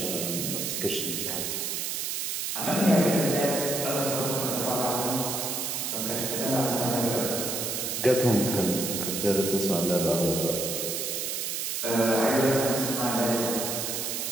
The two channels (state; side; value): noise; right; hiss, 2 dB below the sound